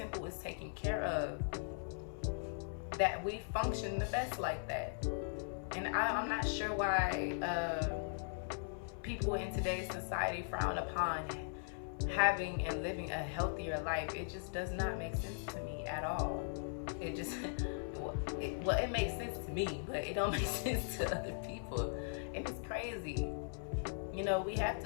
is taken care of. That we function the best like that. And I'm not sure why people in today's society frown upon having and living a healthier life. It just does not make sense to me at all. It just, it makes sense to me, but it don't make sense to other people. And it's crazy. You know, we have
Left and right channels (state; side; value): silent; right; 52 dB below the other